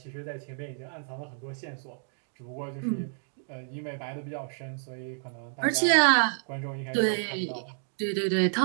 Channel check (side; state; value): left; silent; 58 dB below the other